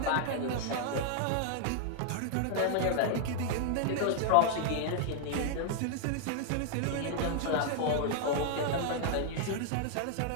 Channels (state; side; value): different; both; correlation -0.01